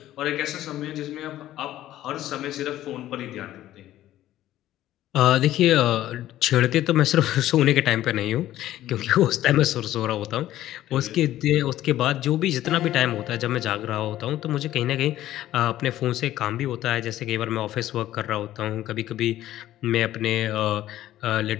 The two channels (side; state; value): right; quieter; 13.7 dB